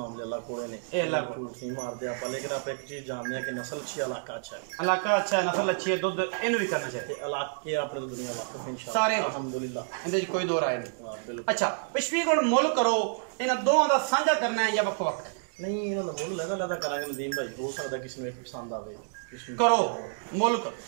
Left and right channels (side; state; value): left; silent; digital silence